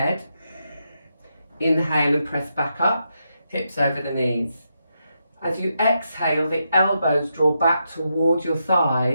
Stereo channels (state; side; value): inverted; both; correlation -0.83